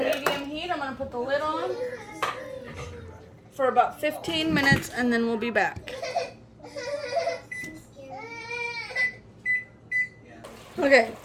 heat. I'm going to put the lid on for about 15 minutes and then we'll be back. Okay,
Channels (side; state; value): both; identical; correlation 1.00